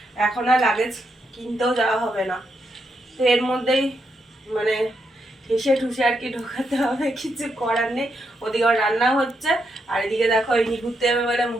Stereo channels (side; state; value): both; normal; correlation 0.81